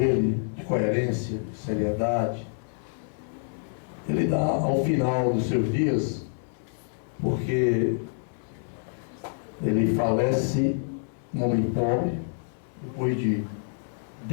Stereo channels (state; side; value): silent; right; 60 dB below the other